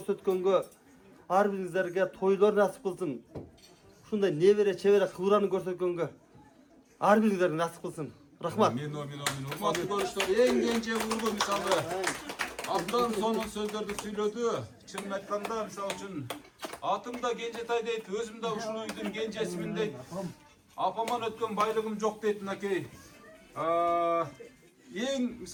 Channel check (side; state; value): both; identical; correlation 1.00